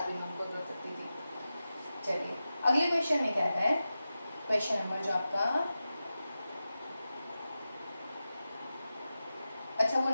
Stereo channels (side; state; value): both; inverted; correlation -0.93